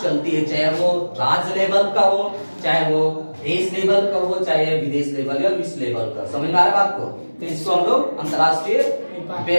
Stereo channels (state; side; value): inverted; both; correlation -1.00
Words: है, चाहे वो राज्य लेवल का हो, चाहे वो देश लेवल का हो, चाहे विदेश लेवल या विश्व लेवल का। समझ में आ रहा है बात को। तो इसको हम लोग अंतर्राष्ट्रीय